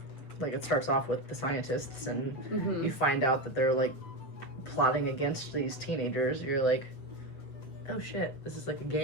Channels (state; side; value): late; right; 7.7 ms